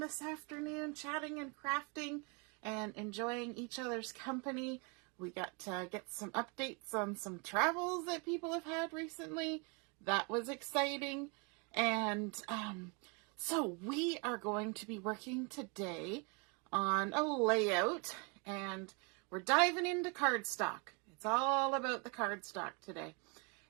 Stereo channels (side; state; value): left; quieter; 32.6 dB